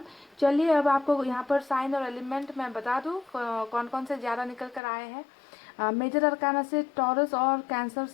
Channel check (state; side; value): drops out; right; at 4.8 s